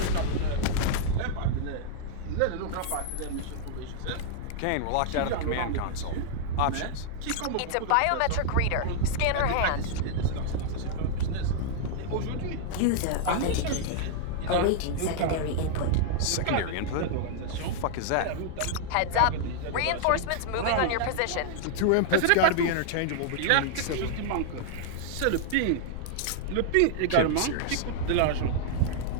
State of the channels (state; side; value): different; both; correlation -0.01